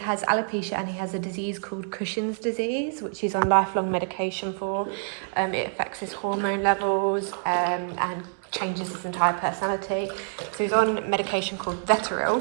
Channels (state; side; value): silent; left; digital silence